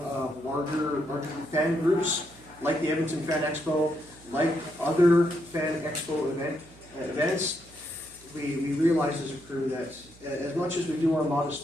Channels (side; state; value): right; noise; hum, 24 dB below the sound